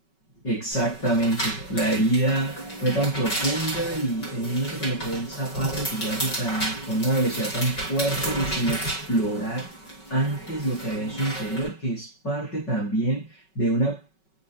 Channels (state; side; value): late; right; 5.3 ms